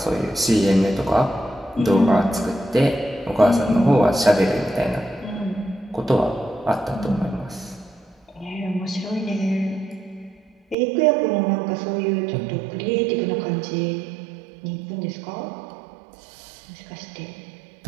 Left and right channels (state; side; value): drops out; left; at 10.8 s